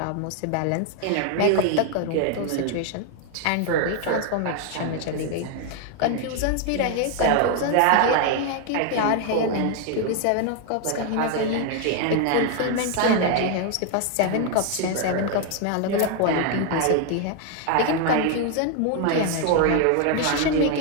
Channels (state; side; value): different; both; correlation 0.00